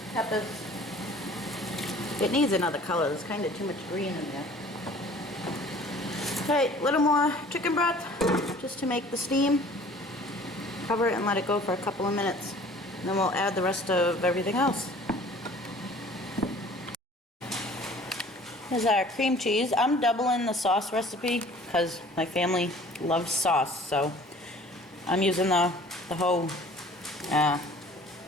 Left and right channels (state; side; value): normal; both; correlation 0.49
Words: Peppers. It needs another color. There's kind of too much green in there. Alright, a little more chicken broth just to make the steam. Cover it and let it go for a couple of minutes. And then we'll add the rest of everything else. Here's our cream cheese. I'm doubling the sauce recipe because my family loves sauce, so I'm using the whole